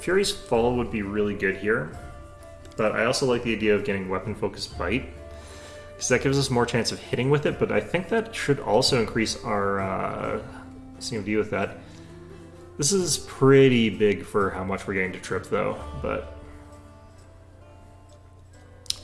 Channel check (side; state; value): both; identical; correlation 1.00